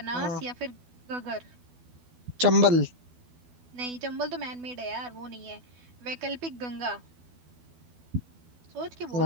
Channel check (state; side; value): late; left; 12 ms